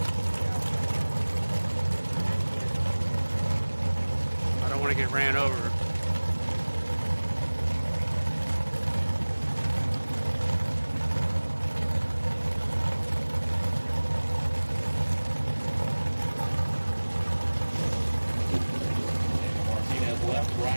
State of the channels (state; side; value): inverted; both; correlation -1.00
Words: I don't want to get ran over. Martinez left,